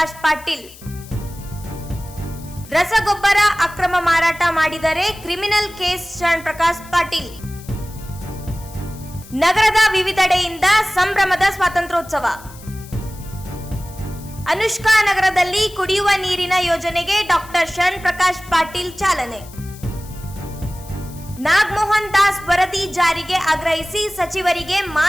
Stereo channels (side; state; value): left; noise; hiss, 20 dB below the sound